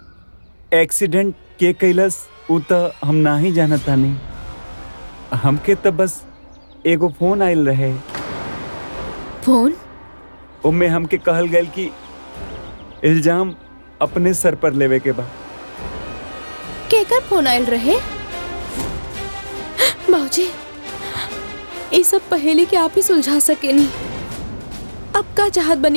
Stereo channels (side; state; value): both; inverted; correlation -1.00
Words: एक्सीडेंट के कैलस वो तो हम ना ही जानता नहीं। हमके तो बस एगो फोन आयल रहे। फोन? उनमें हमके कहल गए कि इल्जाम अपने सर पर लेवे के बा। केकर फोन आयल रहे? बाबूजी ये सब पहेली के आप ही सुलझा सके नहीं। अब का चाहत